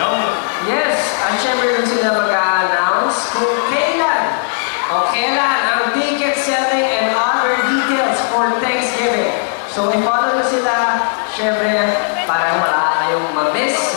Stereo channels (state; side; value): silent; right; 69 dB below the other